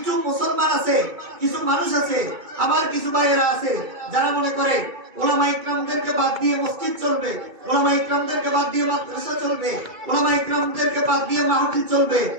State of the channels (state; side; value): late; left; 2.3 ms